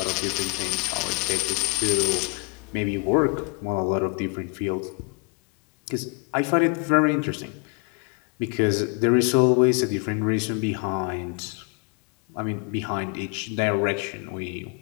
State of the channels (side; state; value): right; quieter; 35.0 dB